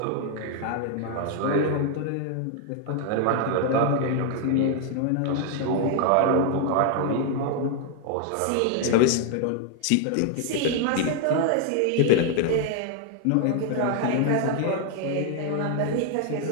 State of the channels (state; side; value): different; both; correlation 0.00